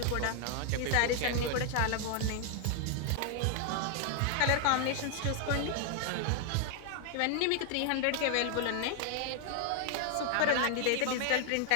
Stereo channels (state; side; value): different; both; correlation 0.00